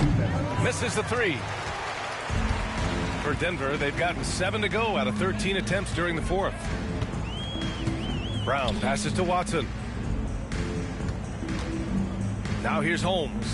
Misses the 3. For Denver, they've gotten 7 to go out of 13 attempts during the 4th. Brown passes to Watson. Now here's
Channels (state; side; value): identical; both; correlation 1.00